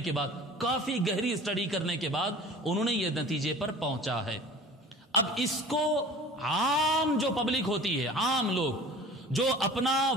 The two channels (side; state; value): both; normal; correlation 0.42